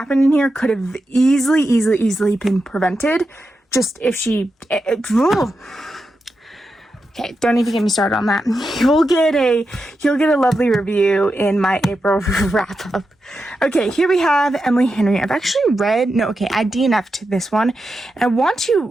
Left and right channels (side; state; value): both; normal; correlation 0.88